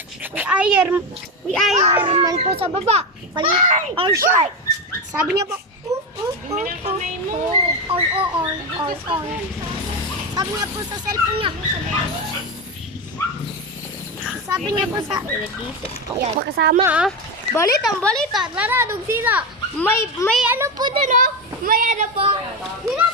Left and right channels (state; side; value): normal; both; correlation 0.15